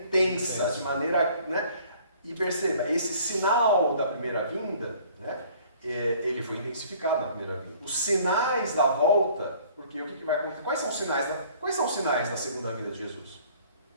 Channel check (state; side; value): inverted; both; correlation -0.54